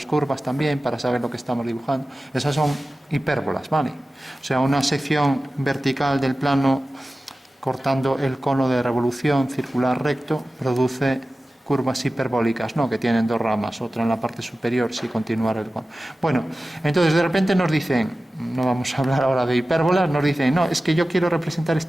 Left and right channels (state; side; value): normal; both; correlation 0.95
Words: curvas también para saber lo que estamos dibujando. Esas son hipérbolas, ¿vale? O sea, una sección vertical del plano cortando el cono de revolución circular recto produce curvas hiperbólicas, ¿no? Que tienen dos ramas, otra en la parte superior, si continuara el... Bueno, entonces de repente nos dicen, no vamos a hablar ahora de hipérbolas, nos dicen, no, es que yo quiero representar